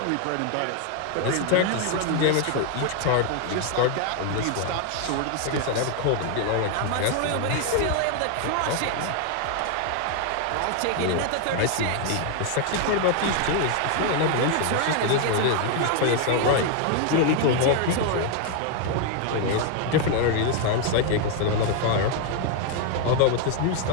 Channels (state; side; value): different; both; correlation 0.00